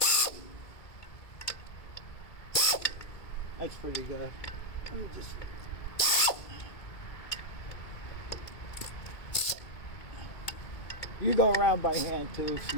That's pretty good. Let me just... You go around by hand too if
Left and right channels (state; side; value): late; right; 2.2 ms